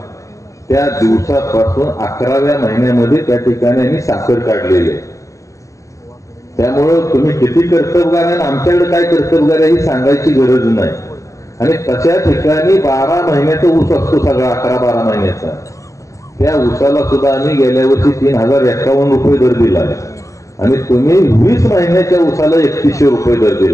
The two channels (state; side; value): late; right; 0.15 ms